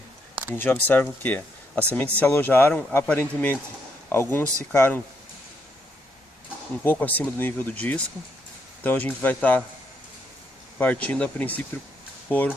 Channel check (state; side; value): normal; both; correlation 0.76